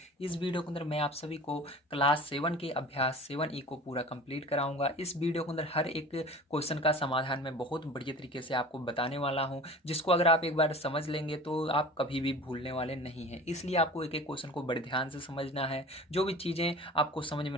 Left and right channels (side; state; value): both; normal; correlation 0.40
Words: इस वीडियो के अंदर मैं आप सभी को क्लास 7 के अभ्यास 7E को पूरा कंप्लीट कराऊंगा। इस वीडियो के अंदर हर एक क्वेश्चन का समाधान मैं बहुत बढ़िया तरीके से आपको बताने वाला हूँ, जिसको अगर आप एक बार समझ लेंगे तो आप कभी भी भूलने वाले नहीं हैं। इसलिए आपको एक एक क्वेश्चन को बड़े ध्यान से समझना है। जो भी चीज़ें आपको समझ